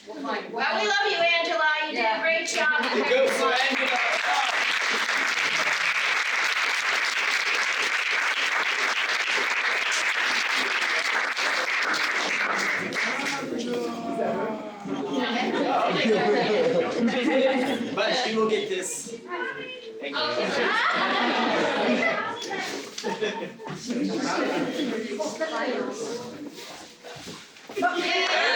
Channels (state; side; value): identical; both; correlation 1.00